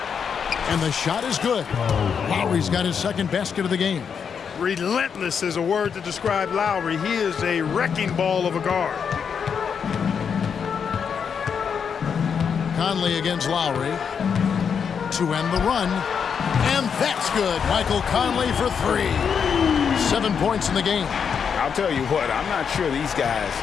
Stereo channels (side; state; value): right; quieter; 6.8 dB